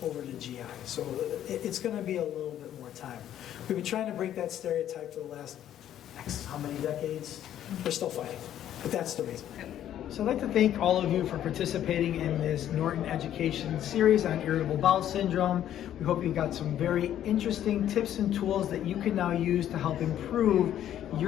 over to GI. So it's going to be a little bit more time. We've been trying to break that stereotype for the last how many decades? We're still fighting, but that's the reason. So I'd like to thank all of you for participating in this Norton education series on irritable bowel syndrome. We hope you got some very interesting tips and tools that you can now use to help improve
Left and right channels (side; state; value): right; quieter; 11.2 dB